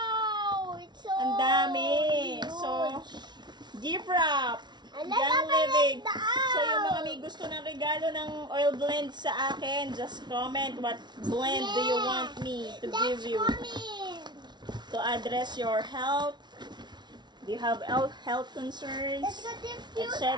It's so ang dami. huge. So, gift wrap. And let's Young open Living. it out. So, yung mga may gusto ng regalo ng oil blend sa akin, just comment what blend do you want me to give you Coming. to address your health. Do you have health concerns? Let's go diffuse. Etc.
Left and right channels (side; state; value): left; late; 0.21 ms